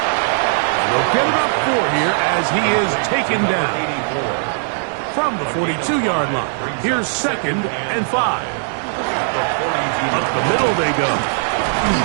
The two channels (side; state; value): left; silent; digital silence